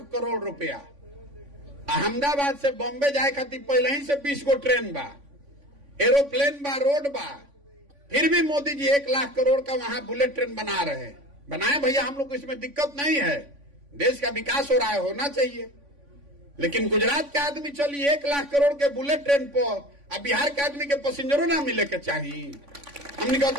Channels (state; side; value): late; left; 3.5 ms